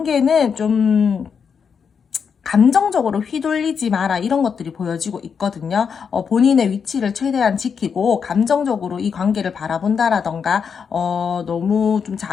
좀 감정적으로 휘둘리지 마라 이런 것들이 보여지고 있거든요. 본인의 위치를 최대한 지키고 감정적으로 이 관계를 바라본다라던가 너무 좀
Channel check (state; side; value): quieter; right; 6.5 dB